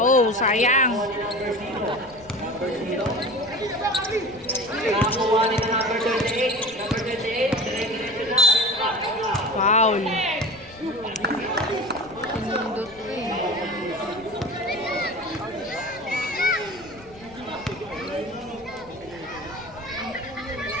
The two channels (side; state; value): left; noise; rumble, 23 dB below the sound